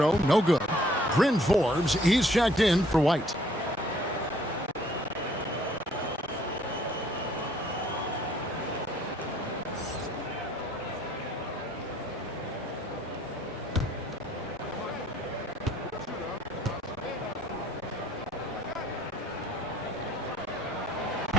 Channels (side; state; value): both; normal; correlation 0.61